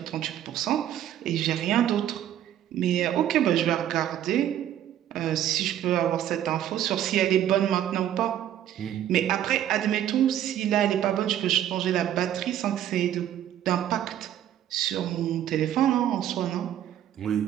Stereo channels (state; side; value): quieter; left; 11.3 dB